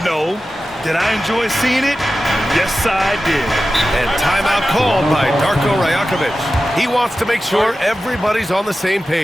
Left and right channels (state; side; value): normal; both; correlation 0.94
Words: Did I enjoy seeing it? Yes, I did. And timeout called by Darko Rajakovic. He wants to make sure everybody's on the same